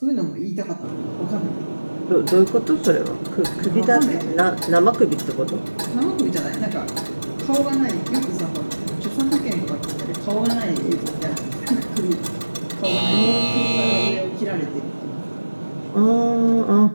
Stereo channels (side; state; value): both; inverted; correlation -1.00